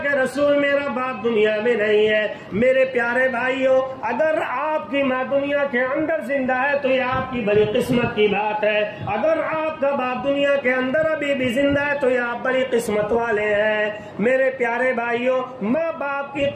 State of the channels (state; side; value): identical; both; correlation 1.00